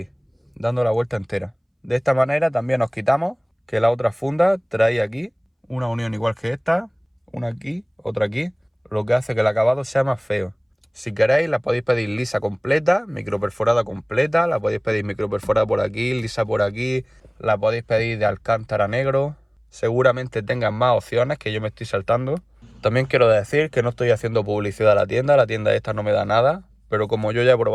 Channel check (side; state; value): both; identical; correlation 1.00